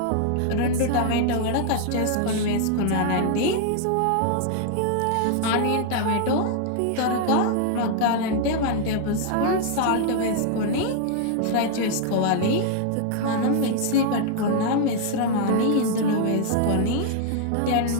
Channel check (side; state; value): both; different; correlation 0.00